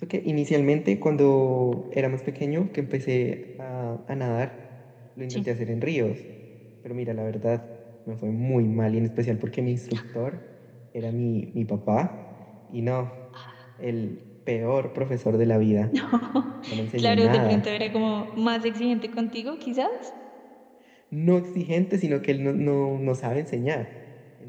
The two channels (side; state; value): both; identical; correlation 1.00